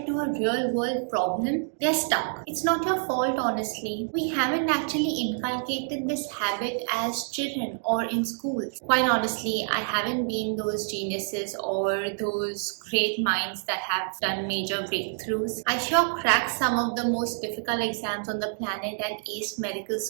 to a real world problem, they're stuck. It's not your fault, honestly. We haven't actually inculcated this habit as children or in schools. Quite honestly, I haven't been those geniuses or those great minds that have done major breakthroughs. I sure cracked some of the most difficult exams on the planet and aced medical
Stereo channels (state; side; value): silent; left; digital silence